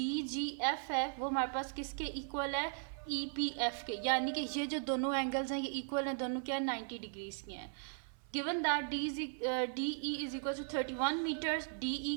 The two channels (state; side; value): silent; left; 53 dB below the other